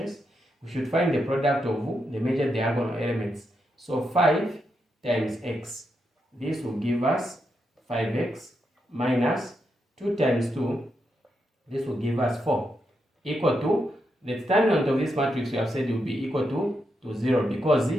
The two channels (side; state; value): both; normal; correlation 0.83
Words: we should find the product of the major diagonal elements. So 5 times x. This will give us 5x minus 2 times 2. This will give us 4. Equal to the determinant of this matrix we have said will be equal to 0 because